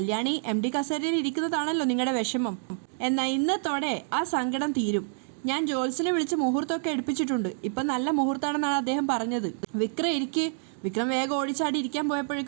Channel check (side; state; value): left; silent; digital silence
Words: MD കസേരയിൽ ഇരിക്കുന്നതാണല്ലോ നിങ്ങളുടെ വിഷമം, എന്നാൽ ഇന്നത്തോടെ ആ സങ്കടം തീരും. ഞാൻ ജോത്സ്യനെ വിളിച്ച് മുഹൂർത്തമൊക്കെ എടുപ്പിച്ചിട്ടുണ്ട്, ഇപ്പം നല്ല മുഹൂർത്തമാണെന്നാണ് അദ്ദേഹം പറഞ്ഞത്. വിക്രം വേഗം ഓടിച്ചാടി ഇരിക്കാൻ